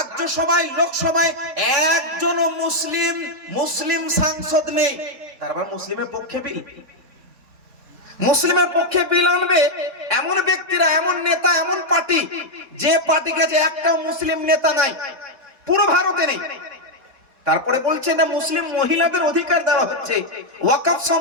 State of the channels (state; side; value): late; left; 3.6 ms